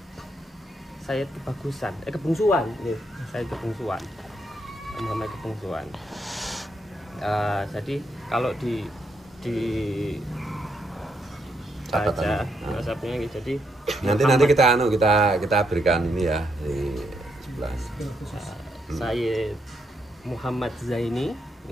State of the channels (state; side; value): normal; both; correlation 0.77